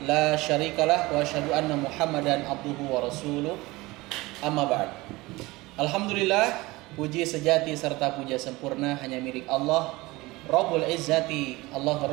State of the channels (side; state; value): left; quieter; 21.2 dB